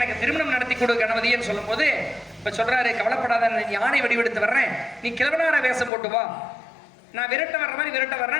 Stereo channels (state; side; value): drops out; right; at 5.9 s